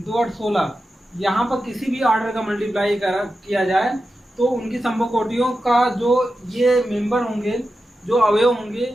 8 16, यहाँ पर किसी भी ऑर्डर का मल्टीप्लाई किया जाए तो उनकी संभव कोटियों का जो ये मेंबर होंगे, जो अवयव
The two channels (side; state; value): both; normal; correlation 0.91